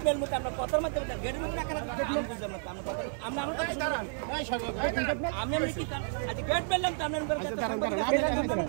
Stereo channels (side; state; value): left; silent; digital silence